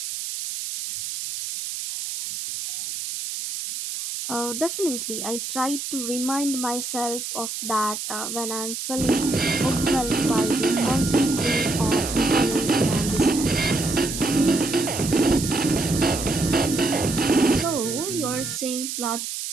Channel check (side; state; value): right; noise; hiss, 6 dB below the sound